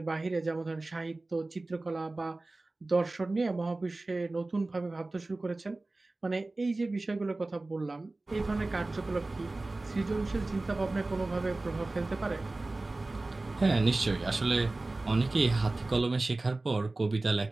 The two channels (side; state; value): left; quieter; 3.1 dB